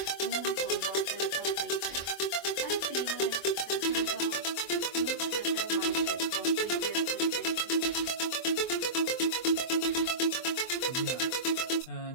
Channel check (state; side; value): late; right; 24 ms